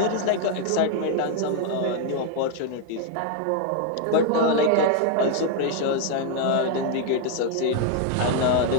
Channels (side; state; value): both; different; correlation 0.00